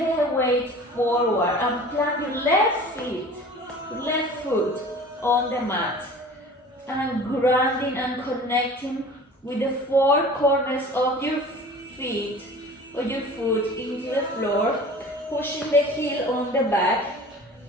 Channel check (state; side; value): normal; both; correlation 0.42